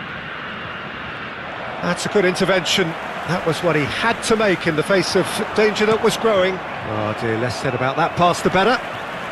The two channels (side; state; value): both; identical; correlation 1.00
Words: That's a good intervention. That was what he had to make in the face of danger that was growing. Oh dear, less said about that pass the better.